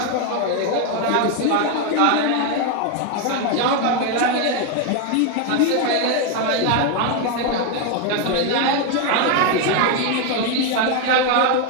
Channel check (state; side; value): different; both; correlation 0.01